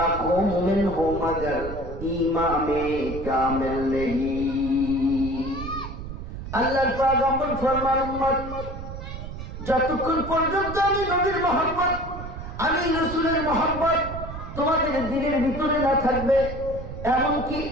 में हो मगर ईमान में कामिल नहीं। আল্লাহর পয়গম্বর ফরমান উম্মত যতক্ষণ পর্যন্ত আমি নবীর মহব্বত, আমি রাসূলের মহব্বত তোমাদের দিলের ভিতরে না থাকবে, এমনকি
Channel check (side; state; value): right; noise; rumble, 9 dB below the sound